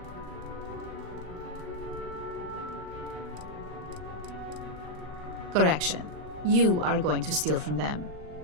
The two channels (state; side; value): late; left; 39 ms